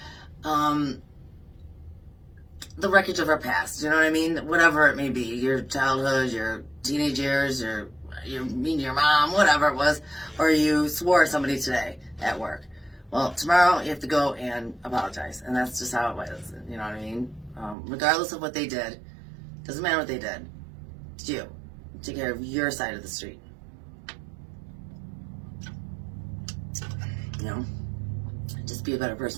the wreckage of our past. You know what I mean? Whatever it may be, your childhood, your teenage years, you're mean to your mom, whatever it was, or you swore at somebody today at work. Well, tomorrow you have to go and apologize, and that's just how it was. You know what I mean? Regardless of what they did, doesn't matter what they did. It's you. Take care of your side of the street. Just be a better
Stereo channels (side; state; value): left; drops out; at 17.8 s